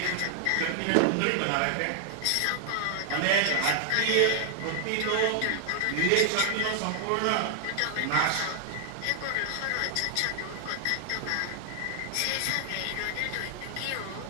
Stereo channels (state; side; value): different; both; correlation 0.00